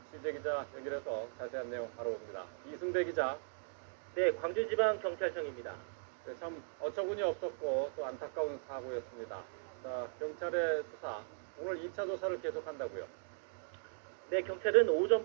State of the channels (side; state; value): left; silent; digital silence